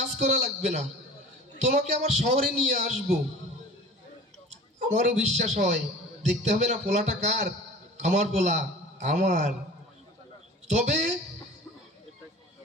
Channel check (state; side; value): normal; both; correlation 0.40